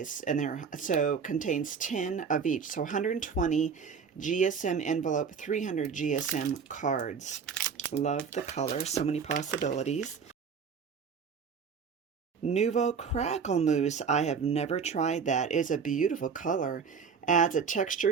and contains 10 of each. So 120 GSM envelope, 300 GSM cards. Love the color, so many possibilities. Nouveau Crackle Mousse. I have never tried that. It's a beautiful color. Adds a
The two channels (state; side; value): quieter; left; 6.1 dB